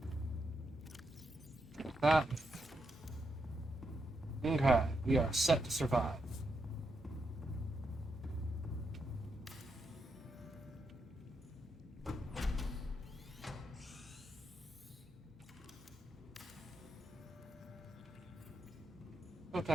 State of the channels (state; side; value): normal; both; correlation 0.82